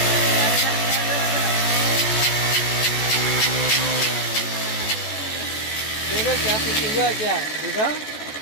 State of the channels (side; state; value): right; late; 14 ms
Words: देखो क्या कुछ हुआ क्या, देखो।